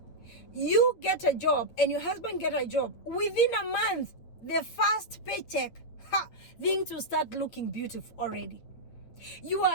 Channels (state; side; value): late; right; 8.8 ms